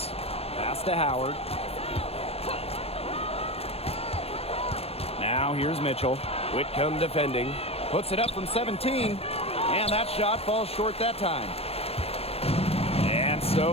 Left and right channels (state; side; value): late; right; 0.29 ms